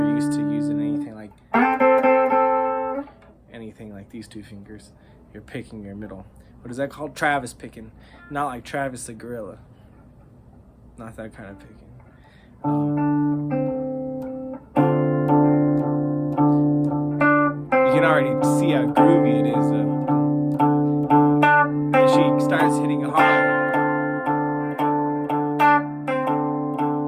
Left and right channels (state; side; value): identical; both; correlation 1.00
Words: used to using anything like these two fingers. You're picking your middle. What is that called? Travis picking. Not like Travis the gorilla. Not that kind of picking. You can already see how groovy it is. And she starts hitting it hard.